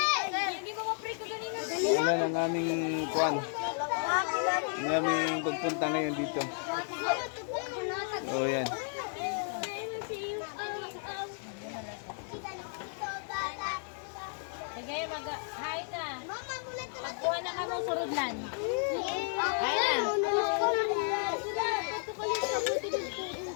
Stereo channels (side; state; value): right; silent; 56 dB below the other